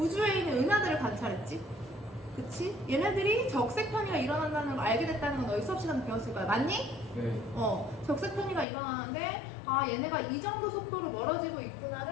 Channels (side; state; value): right; drops out; at 8.7 s